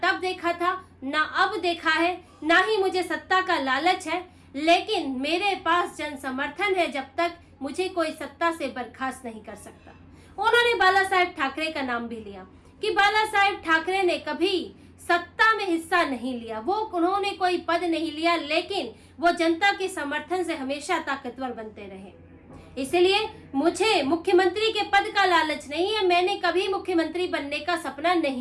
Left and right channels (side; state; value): both; identical; correlation 1.00